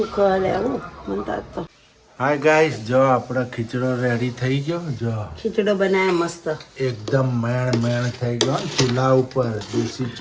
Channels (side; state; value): both; identical; correlation 1.00